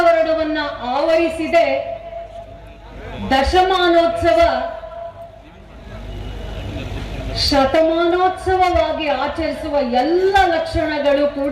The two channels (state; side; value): identical; both; correlation 1.00